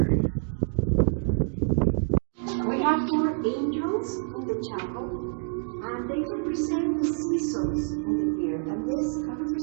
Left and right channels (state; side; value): silent; left; 60 dB below the other